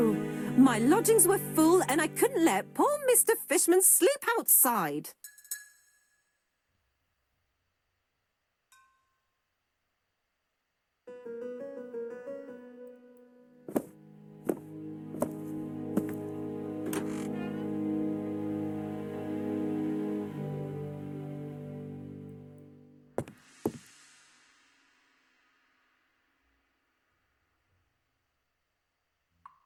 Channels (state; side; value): identical; both; correlation 1.00